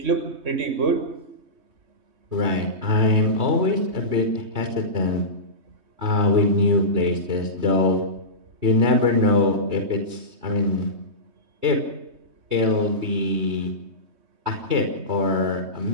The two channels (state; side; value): late; left; 3.2 ms